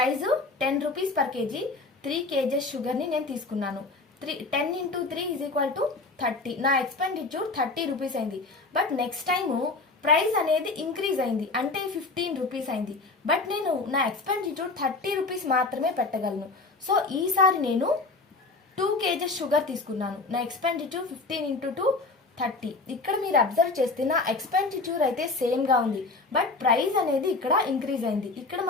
10 rupees per KG, 3 kgs షుగర్ని నేను తీసుకున్నాను. 10 into 3 ఈజ్ ఈక్వల్ టు 30. నా ఎక్స్పెండిచర్ 30 రూపీస్ అయింది. బట్ నెక్స్ట్ టైము ప్రైస్ అనేది ఇంక్రీజ్ అయింది, అంటే 15 రూపీస్ అయింది. బట్ నేను నా ఎక్స్పెండిచర్ 30 రూపీస్ మాత్రమే పెట్టగలను. సో ఈసారి నేను 2 kgs షుగర్ తీసుకున్నాను. నా ఎక్స్పెండిచర్ 15 into 2 30. ఇక్కడ మీరు అబ్జర్వ్ చేస్తే నా ఎక్స్పెండిచర్ అయితే సేమ్గా ఉంది, బట్ ప్రైస్ అనేది ఇక్కడ ఇంక్రీజ్ అయింది. ఇక్కడ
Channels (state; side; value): quieter; right; 3.6 dB